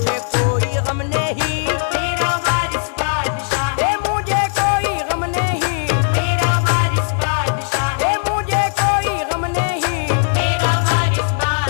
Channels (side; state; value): right; silent; digital silence